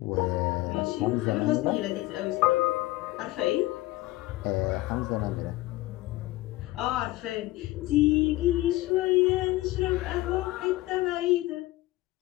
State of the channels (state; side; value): quieter; right; 18.4 dB